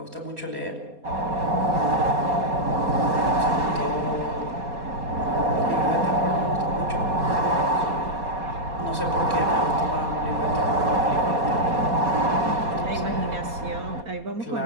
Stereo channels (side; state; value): left; late; 4.2 ms